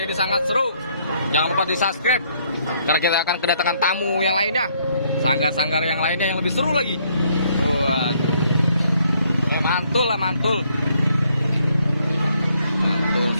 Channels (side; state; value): both; inverted; correlation -0.69